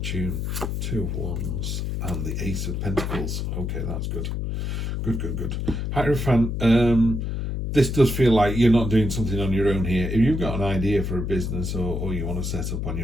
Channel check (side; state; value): left; noise; hum, 2 dB below the sound